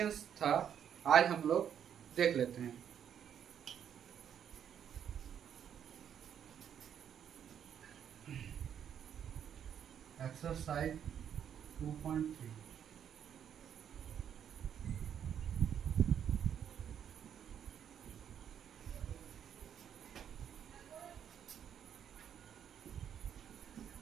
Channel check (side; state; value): left; quieter; 8.9 dB